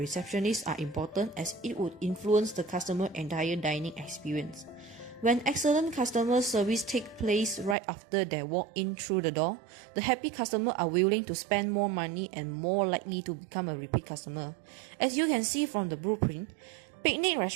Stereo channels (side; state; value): left; drops out; at 7.8 s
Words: are important as it would influence the customer entire dining experience. When excellent customer service takes place right after they walk in through the door, the happy customer are willing to spend more money and more likely to become a repeat customer. As you can see from the blueprint, Picnic